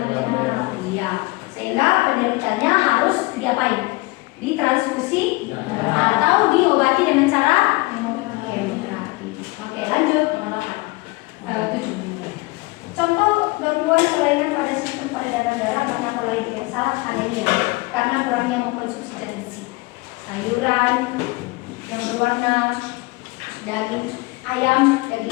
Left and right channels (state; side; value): quieter; right; 23.8 dB